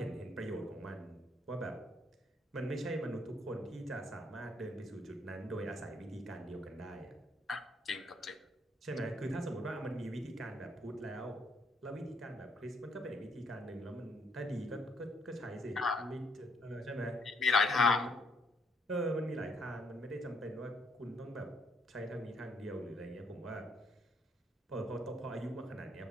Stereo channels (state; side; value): normal; both; correlation 0.70